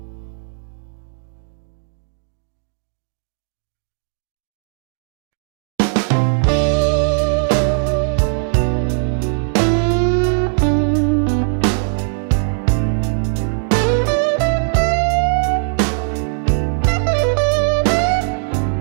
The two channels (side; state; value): left; silent; digital silence